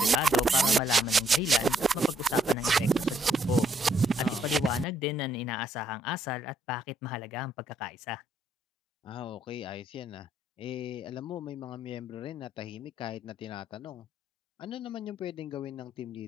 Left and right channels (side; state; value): both; normal; correlation 0.71